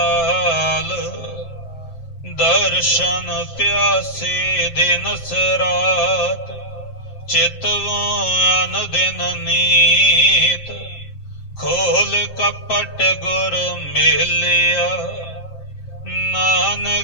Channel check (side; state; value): right; late; 7.6 ms